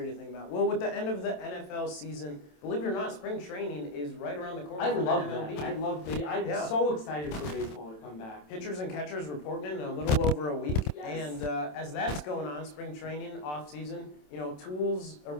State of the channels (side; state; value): right; late; 27 ms